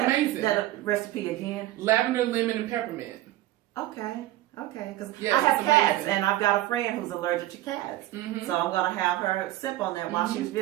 That recipe again? Lavender, lemon, and peppermint. Okay. Because I have cats, and I've got a friend who's allergic to cats. Mm-hmm. So I'm going to have her sip on that while she's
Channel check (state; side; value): quieter; left; 15.7 dB